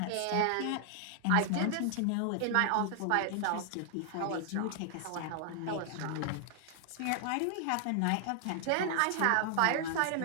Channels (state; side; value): different; both; correlation 0.00